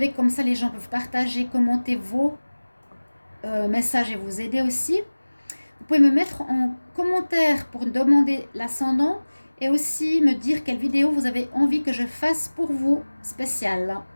comme ça, les gens peuvent partager, commenter vos messages et vous aider aussi. Vous pouvez me mettre en commentaire pour demander l'ascendant et aussi me dire quelle vidéo vous avez envie que je fasse pour vous spéciale.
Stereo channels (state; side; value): inverted; both; correlation -1.00